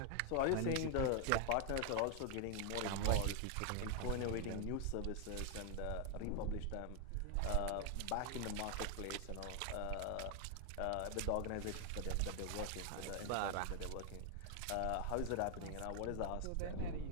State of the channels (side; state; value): both; different; correlation 0.00